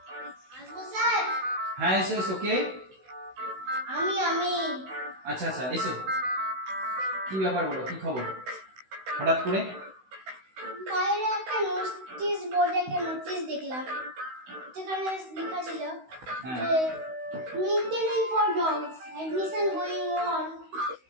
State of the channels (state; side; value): late; left; 16 ms